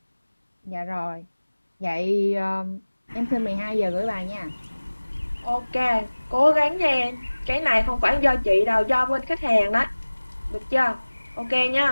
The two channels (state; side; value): inverted; both; correlation -1.00